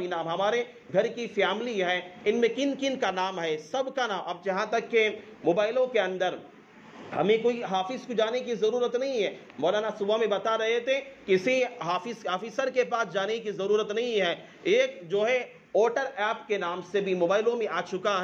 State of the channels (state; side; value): identical; both; correlation 1.00